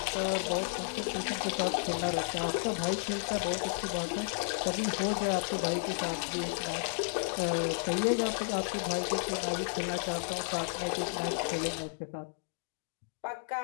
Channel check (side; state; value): right; silent; digital silence